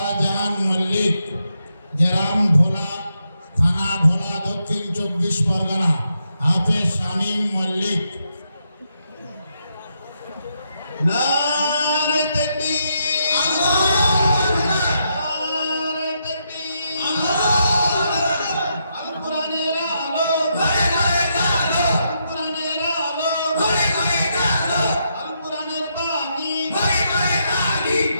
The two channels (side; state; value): both; inverted; correlation -0.80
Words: মল্লিক, গ্রাম ভোলা, থানা ভোলা, দক্ষিণ 24 পরগনা। হাফেজ শামীম মল্লিক। নারে তাকবীর, নারে তাকবীর, আল কোরআনের আলো, ঘরে ঘরে আলো, আল কোরআনের আলো, ঘরে ঘরে আলো, আল কোরআনের বাণী, ঘরে ঘরে বাণী,